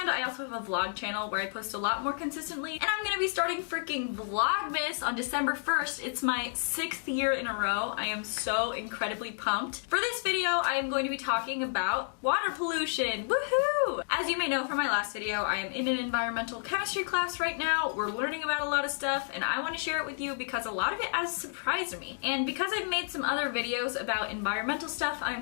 I also have a vlog channel where I post a lot more consistently, and I'm gonna be starting freaking Vlogmas on December 1st. It's my 6th year in a row. I am so incredibly pumped. For this video, I am going to be talking about water pollution. Woohoo! As you may know from my last video, I am in an environmental chemistry class right now. We're learning about a lot of stuff, and I want to share it with you because a lot of it has surprised me. And because I've made some other videos about environmental stuff, I'm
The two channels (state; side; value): silent; right; digital silence